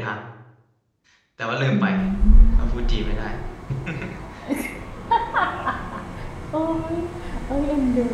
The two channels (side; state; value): both; identical; correlation 1.00